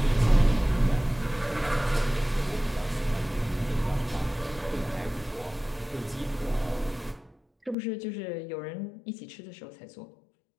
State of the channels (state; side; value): drops out; right; at 7.8 s